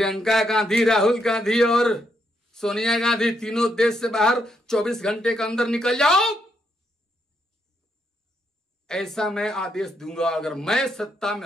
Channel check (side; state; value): both; normal; correlation 0.77